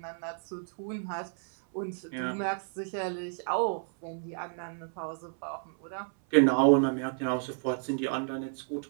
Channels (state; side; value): silent; left; 57 dB below the other